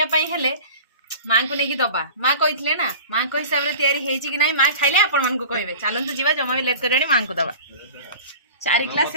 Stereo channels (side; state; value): both; inverted; correlation -0.38